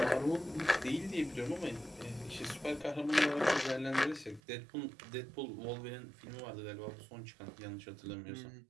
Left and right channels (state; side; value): drops out; left; at 4.4 s